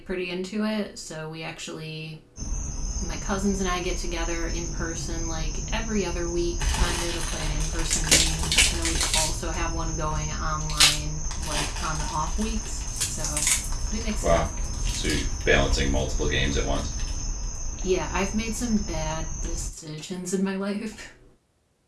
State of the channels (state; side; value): identical; both; correlation 1.00